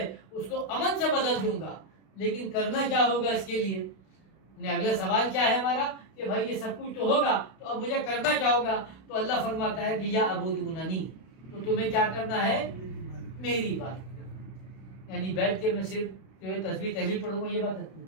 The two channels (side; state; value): right; late; 32 ms